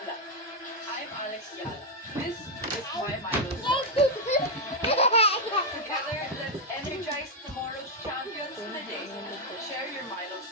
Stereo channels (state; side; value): normal; both; correlation 0.01